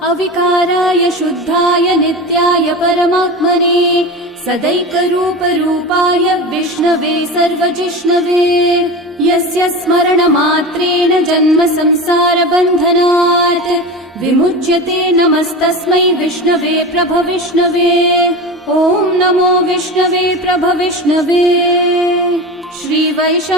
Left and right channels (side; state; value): both; normal; correlation 0.27